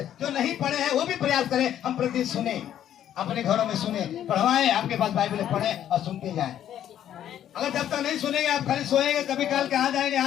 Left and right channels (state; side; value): quieter; right; 10.8 dB